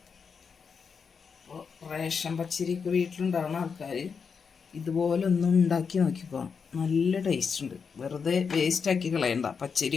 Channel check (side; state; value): right; quieter; 5.9 dB